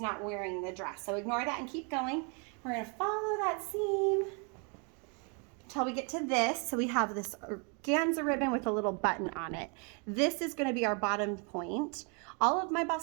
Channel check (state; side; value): quieter; left; 36.6 dB